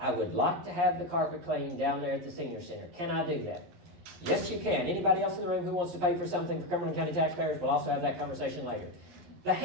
would like to have the carpet cleaned down there at the senior center. Can I do that? Yes, you can. Anybody else in the room who wants to pay for something for Cumberland County taxpayers, we'll also have that conversation later. The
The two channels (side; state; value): left; late; 11 ms